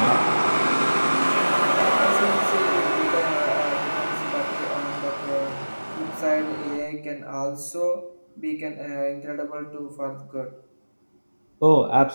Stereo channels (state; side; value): inverted; both; correlation -1.00